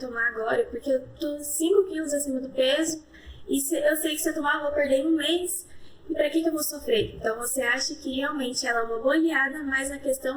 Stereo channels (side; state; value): both; identical; correlation 1.00